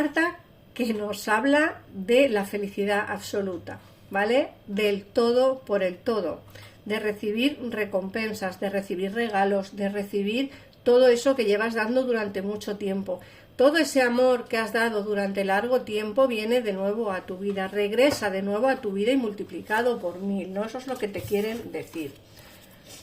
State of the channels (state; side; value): identical; both; correlation 1.00